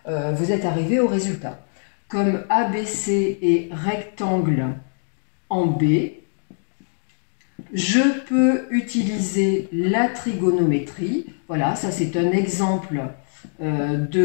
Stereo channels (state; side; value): silent; right; digital silence